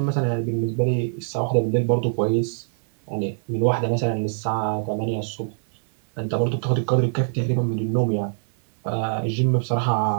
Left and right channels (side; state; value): left; silent; 63 dB below the other